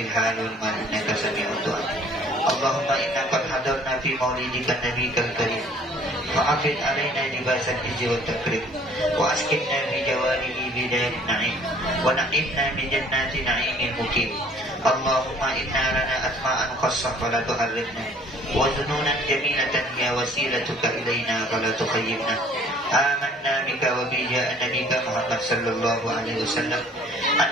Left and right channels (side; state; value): both; normal; correlation 0.54